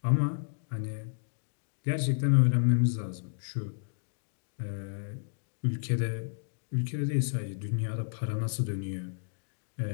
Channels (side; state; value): right; silent; digital silence